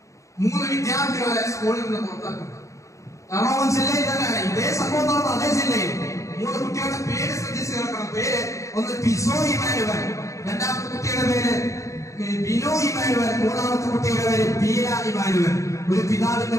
3 വിദ്യാർത്ഥികളെ സ്കൂളിൽ നിന്ന് പുറത്താക്കുന്നു. എറണാകുളം ജില്ലയിൽ തന്നെയാണ് ഇതേ സംഭവം നടന്ന അതേ ജില്ലയിൽ 3 കുട്ടികളുടെ പേര് ശ്രദ്ധിച്ച് കേൾക്കണം. പേര് ഒന്ന് പിസോ ഇമാനുവൽ, രണ്ടാമത്തെ കുട്ടിയുടെ പേര് ബിനോ ഇമാനുവൽ, മൂന്നാമത്തെ കുട്ടിയുടെ പേര് ബീല ഇമാനുവൽ. ഒരു പിതാവിന്റെ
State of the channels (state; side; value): late; right; 0.15 ms